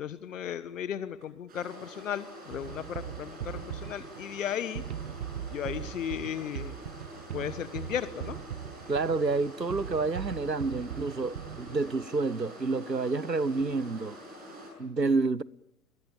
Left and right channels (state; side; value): normal; both; correlation 0.49